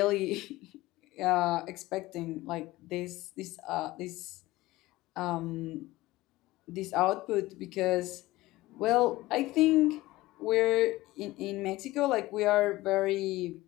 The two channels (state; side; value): quieter; right; 18.2 dB